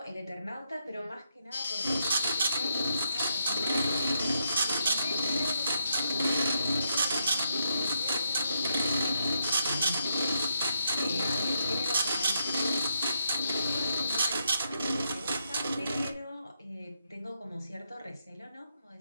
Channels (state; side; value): inverted; both; correlation -0.79